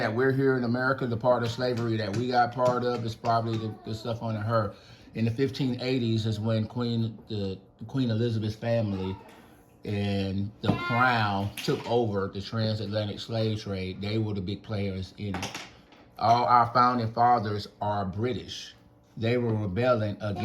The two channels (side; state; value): both; identical; correlation 1.00